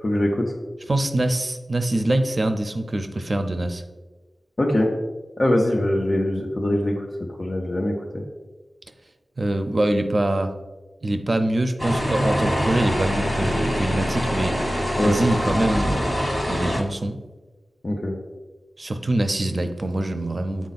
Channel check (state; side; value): normal; both; correlation 0.96